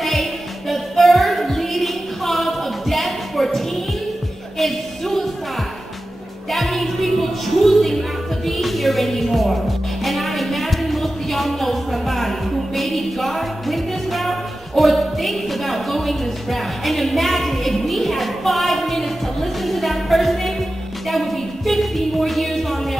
the third leading cause of death for teens is suicide. That means people choosing not to be here anymore. And I imagine most of y'all know somebody who maybe went this route or thinks about going this route. And imagine if we had 5 minutes to listen to that person, that would be 50 more years on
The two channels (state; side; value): normal; both; correlation 0.94